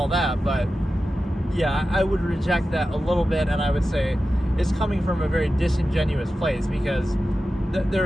that. But yeah, I would reject that a little bit, and I would say it's coming from a very disingenuous place, because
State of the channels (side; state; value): both; normal; correlation 0.93